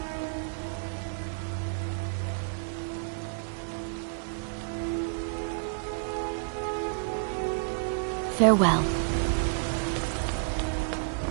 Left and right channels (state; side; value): silent; left; digital silence